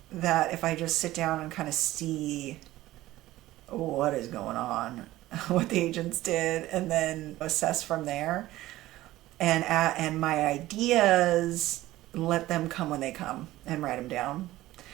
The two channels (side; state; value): left; quieter; 16.2 dB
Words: that if I just sit down and kind of see what is going on, what the agents did, and then assess from there, and my ideas, let them come when they come, and write them down,